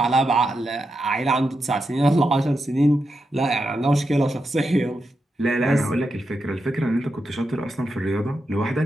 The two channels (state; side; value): normal; both; correlation 0.86